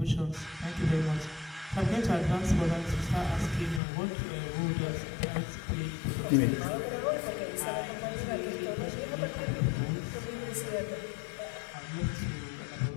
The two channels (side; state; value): right; drops out; at 3.8 s